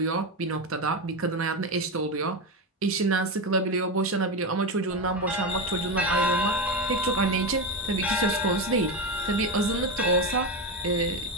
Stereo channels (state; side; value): normal; both; correlation 0.15